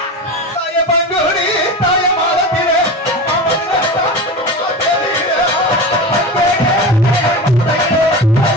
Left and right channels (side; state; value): both; normal; correlation 0.27